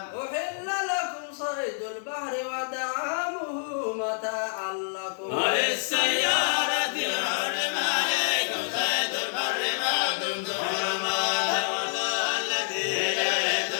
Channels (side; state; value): right; silent; digital silence